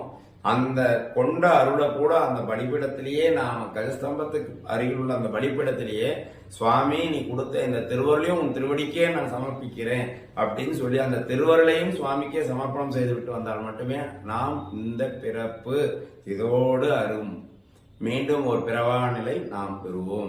அந்த கொண்ட அருளை கூட அந்த பலிபீடத்திலேயே நாம கஜஸ்தம்பத்துக்கு அருகில் உள்ள அந்த பலிபீடத்திலேயே சுவாமி நீ கொடுத்த இந்த திருவருளையும் உன் திருவடிக்கே நான் சமர்ப்பிக்கிறேன் அப்படின்னு சொல்லி அந்த திருவருளையும் சுவாமிக்கே சமர்ப்பணம் செய்து விட்டு வந்தால் மட்டுமே நாம் இந்த பிறப்பு இதோடு அரும் மீண்டும் ஒரு பிறவா நிலை நாம்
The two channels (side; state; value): both; identical; correlation 1.00